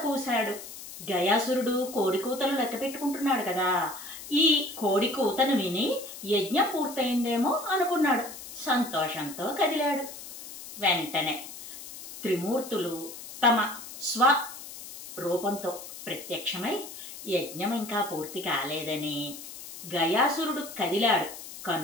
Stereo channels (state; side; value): noise; left; hiss, 13 dB below the sound